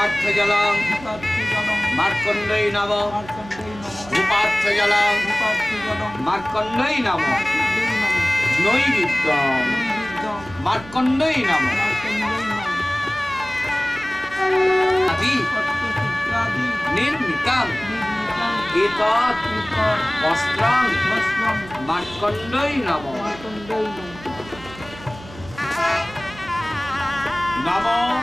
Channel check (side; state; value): right; noise; hum, 18 dB below the sound